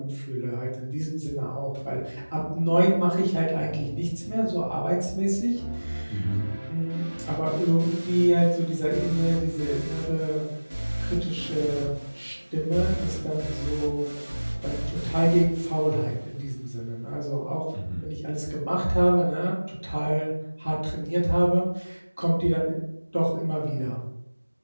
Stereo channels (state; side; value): inverted; both; correlation -1.00